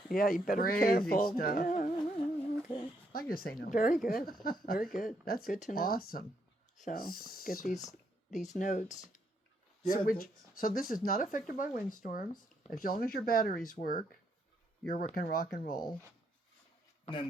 Yeah, you better be Crazy careful. stuff. Yeah, okay. I can just say no. Very good. Very good. That's good to know. awesome. So get these notes. Yeah, So this is not affected by windstorms. As long as your batteries work, you can rock and roll. and then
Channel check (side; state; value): both; normal; correlation 0.75